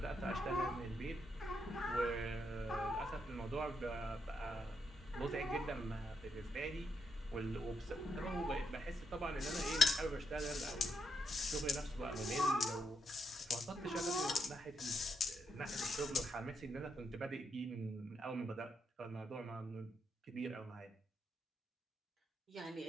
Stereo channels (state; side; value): normal; both; correlation 0.79